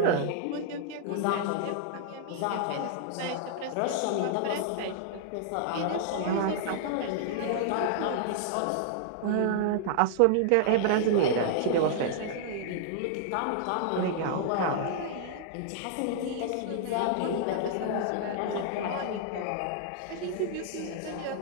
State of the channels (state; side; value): different; both; correlation -0.01